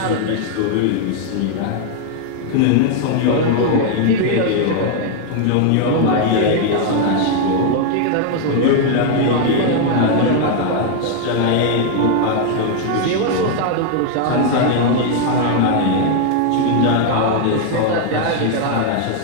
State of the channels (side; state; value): both; different; correlation 0.00